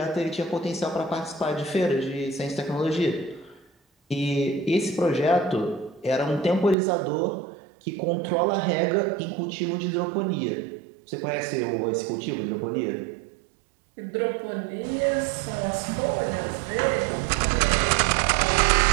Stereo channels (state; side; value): drops out; left; at 6.8 s